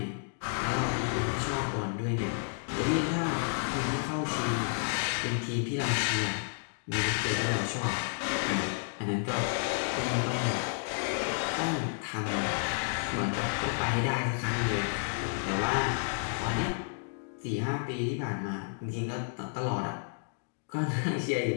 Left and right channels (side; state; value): right; silent; digital silence